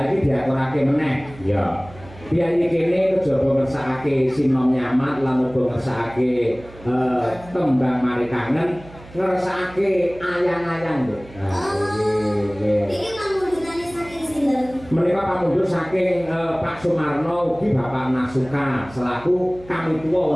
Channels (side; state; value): right; noise; hum, 20 dB below the sound